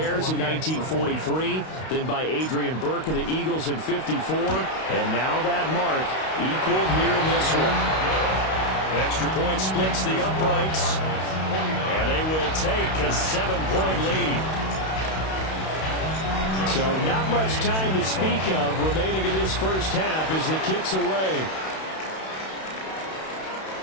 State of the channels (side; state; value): right; late; 32 ms